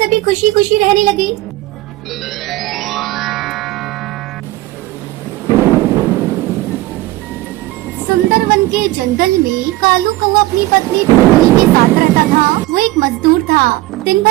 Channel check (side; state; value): left; quieter; 18.3 dB